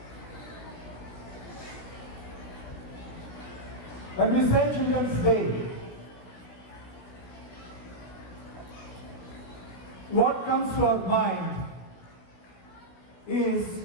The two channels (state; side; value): late; right; 17 ms